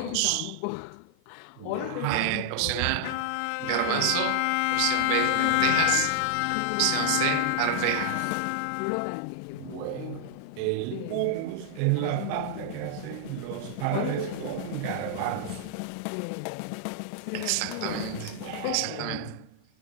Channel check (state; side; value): different; both; correlation -0.01